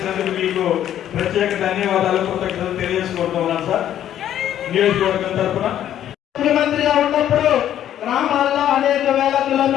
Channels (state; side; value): quieter; right; 11.1 dB